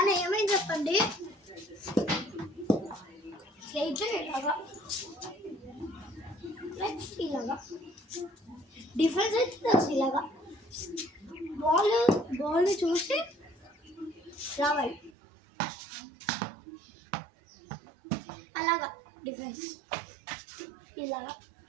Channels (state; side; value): drops out; left; at 15.1 s